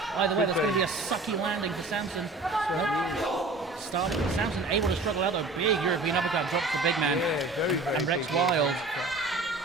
Either way, that's going to be a sucky landing for Sampson. Sampson able to struggle out, though. Big European uppercut drops the big man. Yeah, very, very and Rex big Wild.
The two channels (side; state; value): left; quieter; 3.2 dB